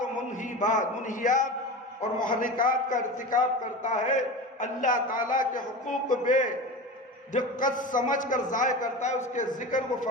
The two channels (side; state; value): both; normal; correlation 0.29